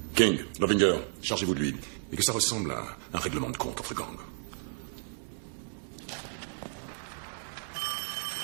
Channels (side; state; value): left; silent; digital silence